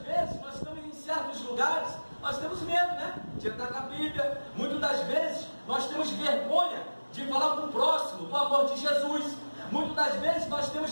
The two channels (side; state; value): both; inverted; correlation -1.00